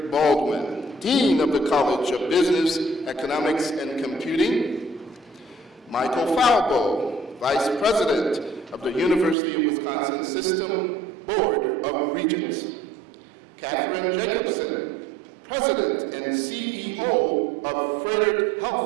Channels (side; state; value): left; drops out; at 9.3 s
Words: Baldwin, Dean of the College of Business, Economics and Computing. Michael Falbo, Vice President of the University of Wisconsin System Board of Regents. Catherine Jacobson, President and CEO of Frederick